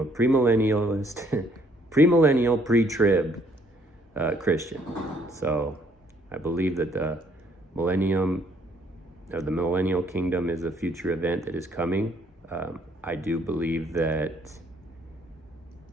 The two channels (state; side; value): normal; both; correlation 0.65